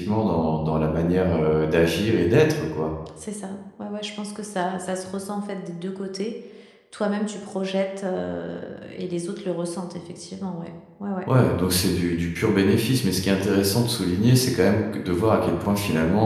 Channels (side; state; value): both; identical; correlation 1.00